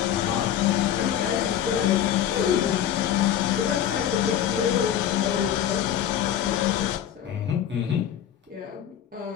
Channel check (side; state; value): right; quieter; 10.1 dB